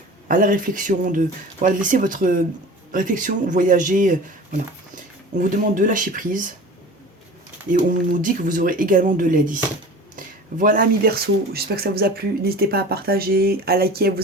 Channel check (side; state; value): both; normal; correlation 0.39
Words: à la réflexion, de laisser votre réflexion voyager. Voilà. On vous demande de lâcher prise et on nous dit que vous aurez également de l'aide ici. Voilà, amis Verseau, j'espère que ça vous a plu. N'hésitez pas à partager, à liker, à